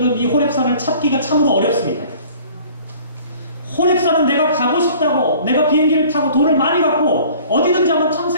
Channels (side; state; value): both; inverted; correlation -0.50